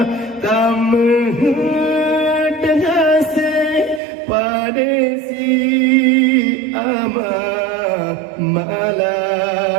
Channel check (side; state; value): left; drops out; at 4.0 s